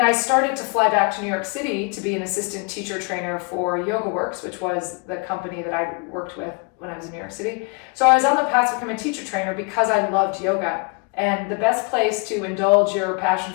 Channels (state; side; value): quieter; right; 33.8 dB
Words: I started to fly back to New York City to be an assistant teacher trainer for Yoga Works, which was the company that I worked with when I was in New York City. So I was on the path to become a teacher trainer because I loved yoga. And the best place to indulge your passion